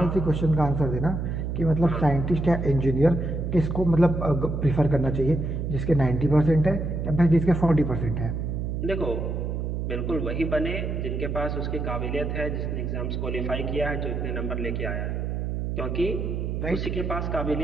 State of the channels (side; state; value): right; noise; hum, 2 dB below the sound